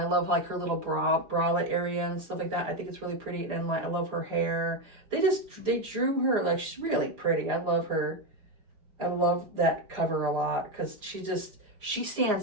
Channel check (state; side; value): late; left; 4.9 ms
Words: love like her little bralette area and stuff like that. I think it's really pretty, and like I love her hair. They drew her like, she's really pretty. I love her. I love that cover a lot because she